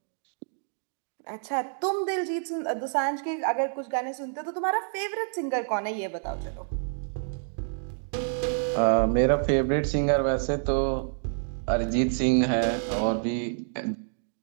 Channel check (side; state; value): left; silent; digital silence